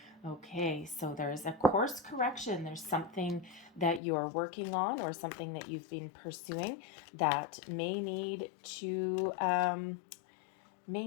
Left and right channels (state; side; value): drops out; right; at 4.0 s